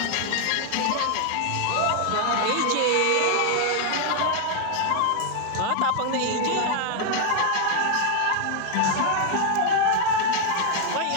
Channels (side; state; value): both; different; correlation 0.00